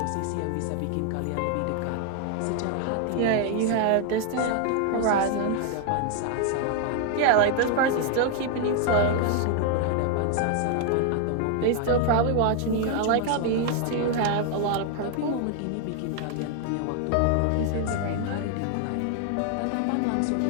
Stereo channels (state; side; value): different; both; correlation 0.00